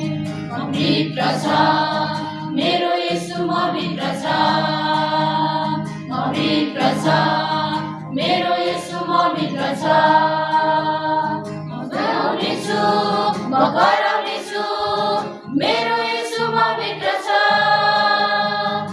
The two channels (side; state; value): both; identical; correlation 1.00